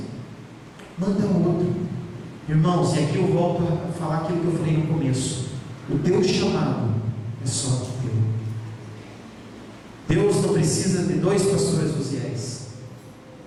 manda outro. Irmãos, e aqui eu volto a falar aquilo que eu falei no começo: o teu chamado é só teu. Deus não precisa de 2 pastores Uziéis,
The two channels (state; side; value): identical; both; correlation 1.00